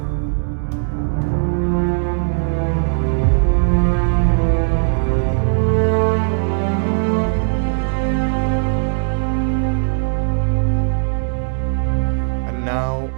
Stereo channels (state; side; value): silent; left; digital silence